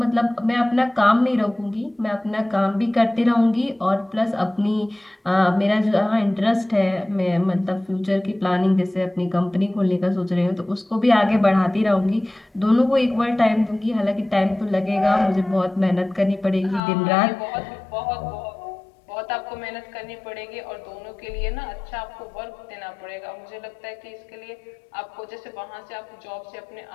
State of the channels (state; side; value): drops out; right; at 16.8 s